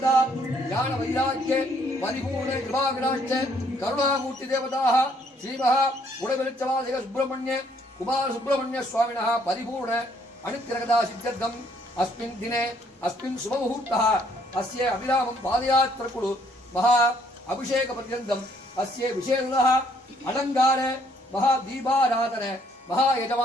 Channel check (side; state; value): both; normal; correlation 0.66